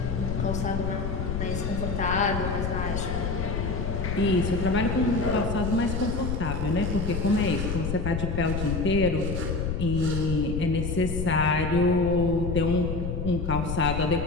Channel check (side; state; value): left; noise; rumble, 2 dB below the sound